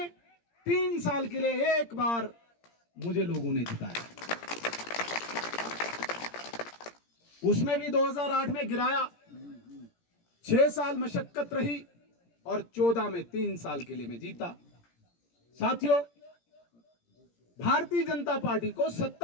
3 साल के लिए एक बार मुझे लोगों ने जिताया। उसमें भी 2008 में गिराया, 6 साल मशक्कत रही और 14 में 3 साल के लिए मैं जीता। साथियों, भारतीय जनता पार्टी को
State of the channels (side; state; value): right; late; 17 ms